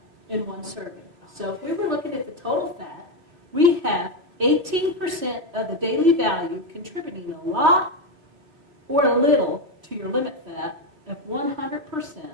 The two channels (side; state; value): left; late; 2.8 ms